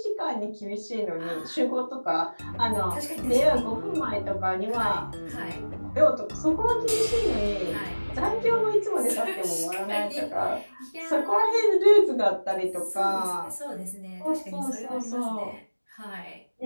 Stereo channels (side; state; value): both; inverted; correlation -1.00